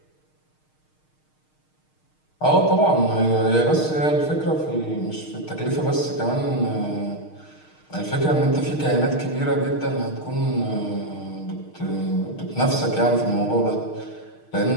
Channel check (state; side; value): late; right; 6.5 ms